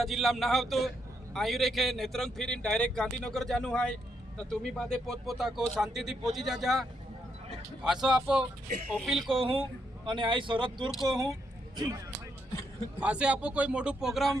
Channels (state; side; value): normal; both; correlation 0.78